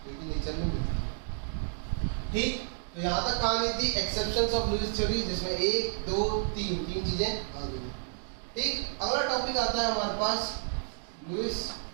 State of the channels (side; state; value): left; silent; digital silence